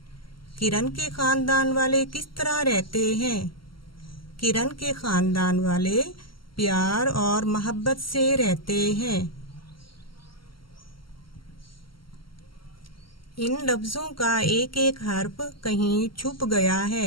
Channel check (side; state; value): right; late; 0.74 ms